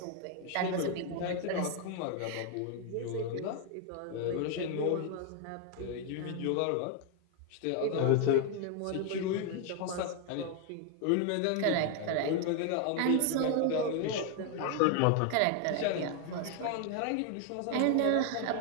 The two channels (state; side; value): different; both; correlation 0.00